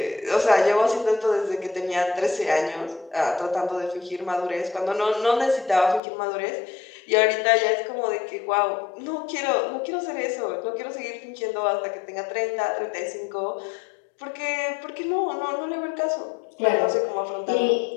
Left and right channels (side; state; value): right; drops out; at 6.0 s